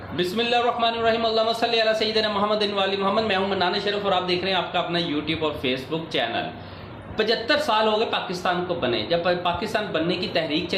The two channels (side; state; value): both; identical; correlation 1.00